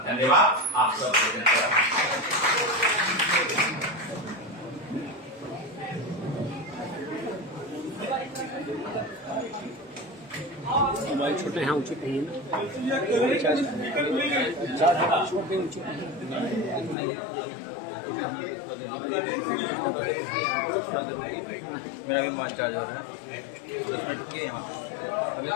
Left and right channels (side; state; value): right; drops out; at 16.9 s